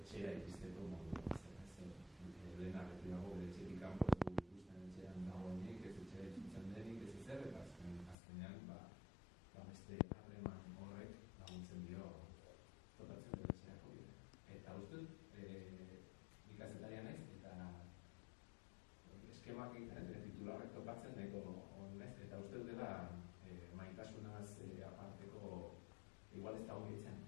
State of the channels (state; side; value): drops out; right; at 8.2 s